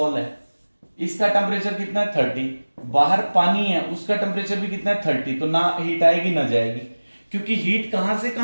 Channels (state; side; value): inverted; both; correlation -1.00